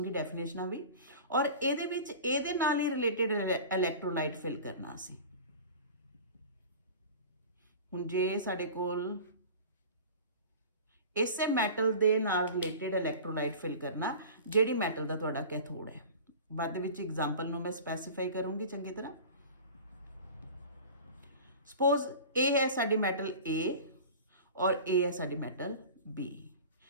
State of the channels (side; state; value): both; inverted; correlation -0.37